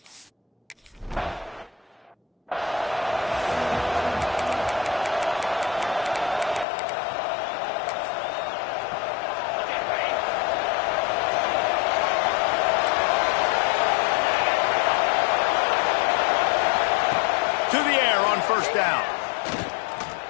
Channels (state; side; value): drops out; right; at 6.7 s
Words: To the air on first down.